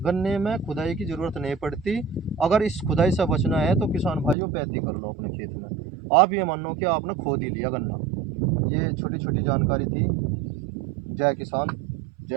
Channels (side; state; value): left; drops out; at 4.4 s